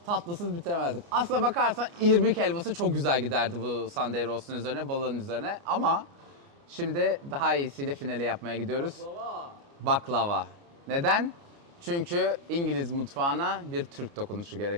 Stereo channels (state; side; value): late; left; 29 ms